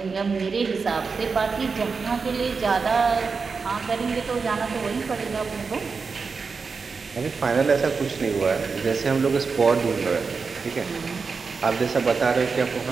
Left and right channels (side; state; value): left; quieter; 4.9 dB